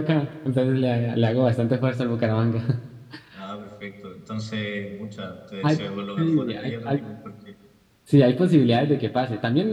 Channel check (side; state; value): both; identical; correlation 1.00